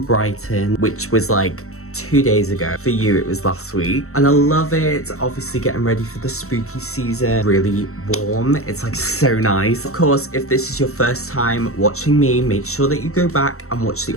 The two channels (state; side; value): late; right; 0.63 ms